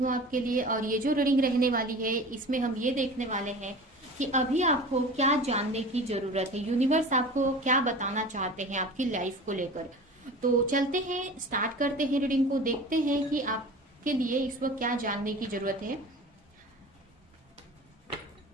आपके लिए, और ये जो रीडिंग रहने वाली है इसमें हम ये देखने वाले हैं कि अभी आपको क्या जानने की जरूरत है, यूनिवर्स आपको क्या बताना चाहते हैं आपकी लाइफ को लेकर। तो चलते हैं, स्टार्ट करते हैं रीडिंग को, देखते हैं कि आपके लिए इस वक्त क्या जानने की जरूरत है।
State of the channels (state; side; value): normal; both; correlation 0.37